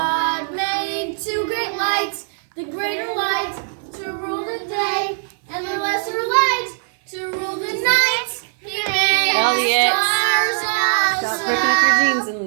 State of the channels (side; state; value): left; silent; 55 dB below the other